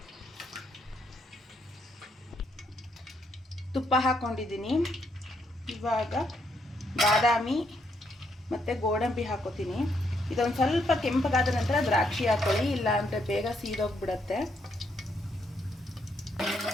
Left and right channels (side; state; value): both; normal; correlation 0.75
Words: ತುಪ್ಪ ಹಾಕ್ಕೊಂಡಿದ್ದೀನಿ. ಇವಾಗ ಬಾದಾಮಿ ಮತ್ತು ಗೋಡಂಬಿ ಹಾಕೋತೀನಿ. ಇದೊಂದು ಸ್ವಲ್ಪ ಕೆಂಪಗಾದ ನಂತರ ದ್ರಾಕ್ಷಿ ಹಾಕೊಳ್ಳಿ, ಇಲ್ಲ ಅಂದರೆ ಬೇಗ ಸೀದೋಗ್ಬಿಡತ್ತೆ.